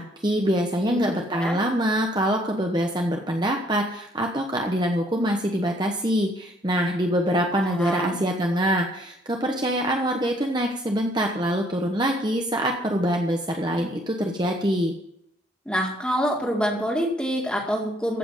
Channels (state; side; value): normal; both; correlation 0.65